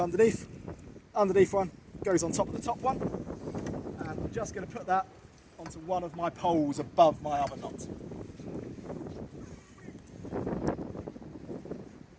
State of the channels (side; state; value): both; identical; correlation 1.00